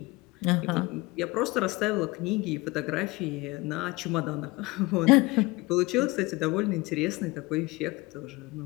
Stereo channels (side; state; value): right; quieter; 22.6 dB